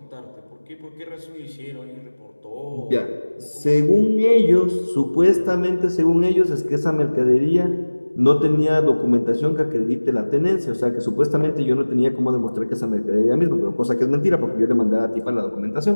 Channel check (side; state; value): both; inverted; correlation -1.00